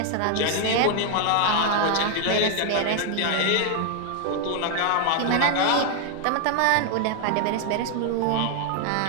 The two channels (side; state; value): both; different; correlation 0.01